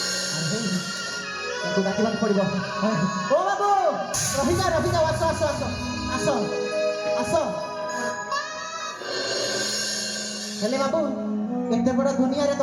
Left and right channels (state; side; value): identical; both; correlation 1.00